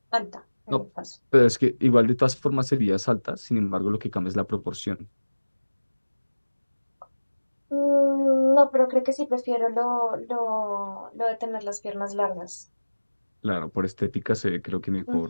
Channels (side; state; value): both; inverted; correlation -1.00